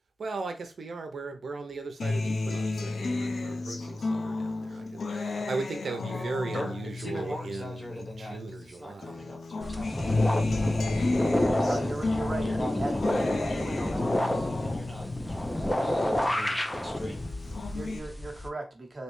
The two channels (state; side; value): normal; both; correlation 0.95